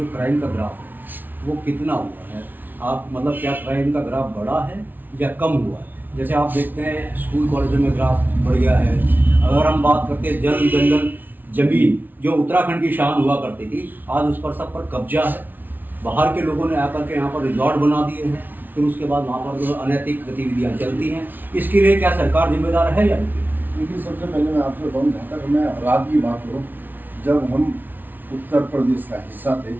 क्राइम का ग्राफ है वो कितना हुआ है? आप मतलब क्या क्राइम का ग्राफ बढ़ा है या कम हुआ है? जैसे आप देखते हैं स्कूल कॉलेजों में ग्राफ बढ़ गया है। अगर हम बात करते हैं जल जंगल जमीन जो उत्तराखंड की शान हुआ करती थी, आज उस पर सब पर कब्जा है। बाहर के लोगों ने आकर के यहाँ पर रिजॉर्ट बना दिए हैं, फिर उसके बाद वहाँ पर जो अनैतिक गतिविधियाँ चलती हैं। इसके लिए क्या सरकार जिम्मेदार है या नहीं? देखिए, सबसे पहले मैं आपसे बताऊँ, जहाँ तक मैं अपराध की बात करूँ, जब हम उत्तर प्रदेश का हिस्सा थे,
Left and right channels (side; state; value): left; late; 0.087 ms